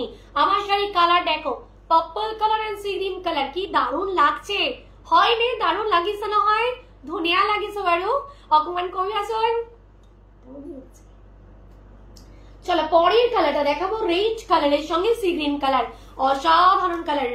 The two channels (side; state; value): both; identical; correlation 1.00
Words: আমার শাড়ির কালার দেখো, purple colour and sea green colour, কি দারুণ লাগছে, হয় নে দারুণ লাগিছে না হয়, ধুনিয়া লাগিছে বারো, অকমান কবি আসন। চলো পরের কালারটা দেখাবো, রেড কালারের সঙ্গে সি গ্রিন কালার, অসাধারণ কালার,